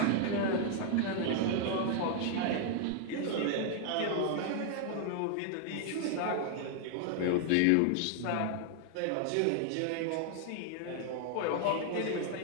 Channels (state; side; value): different; both; correlation 0.00